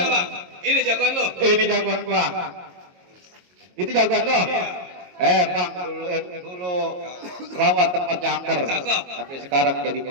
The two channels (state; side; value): late; left; 22 ms